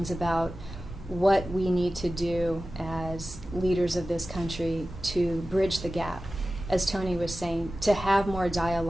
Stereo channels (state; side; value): normal; both; correlation 0.95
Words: about what we need to do as leaders of this country to bridge the gap, as Tony was saying, to have more